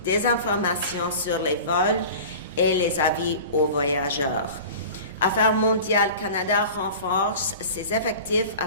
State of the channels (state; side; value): inverted; both; correlation -0.38